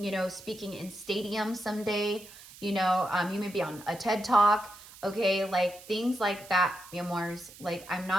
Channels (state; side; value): noise; right; hiss, 19 dB below the sound